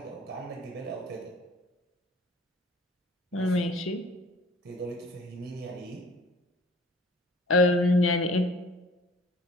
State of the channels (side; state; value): both; normal; correlation 0.51